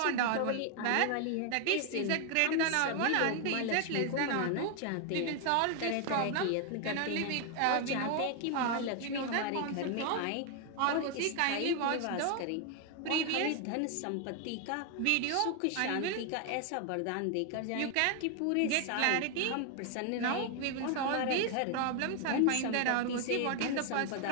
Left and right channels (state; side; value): different; both; correlation 0.01